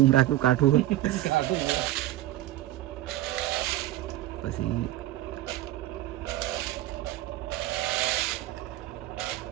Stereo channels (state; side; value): quieter; left; 15.2 dB